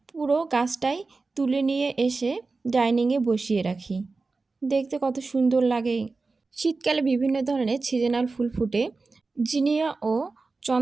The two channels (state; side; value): quieter; left; 3.9 dB